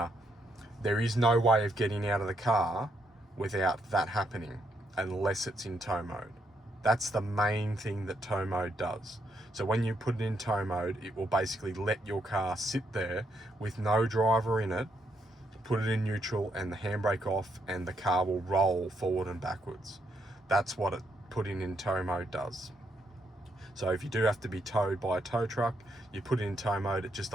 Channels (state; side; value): normal; both; correlation 0.77